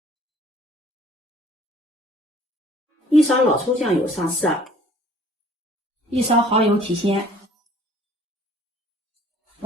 ，1勺老抽醬油上色。1勺蚝油提鮮，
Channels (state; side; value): normal; both; correlation 0.54